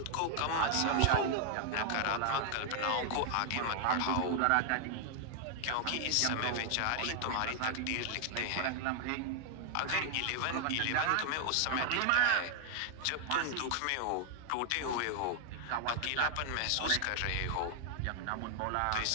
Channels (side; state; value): both; different; correlation 0.00